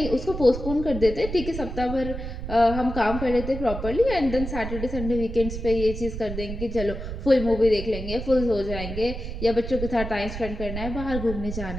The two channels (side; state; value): right; noise; rumble, 7 dB below the sound